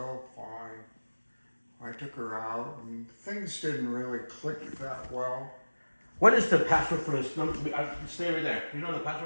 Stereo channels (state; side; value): inverted; both; correlation -1.00